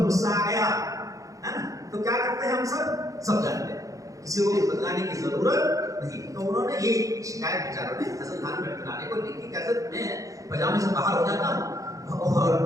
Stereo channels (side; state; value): left; late; 0.16 ms